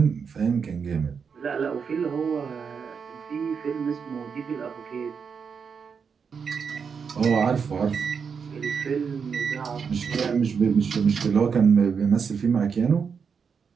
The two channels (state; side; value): quieter; left; 6.2 dB